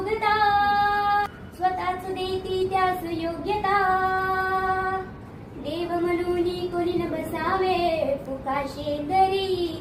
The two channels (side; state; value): both; identical; correlation 1.00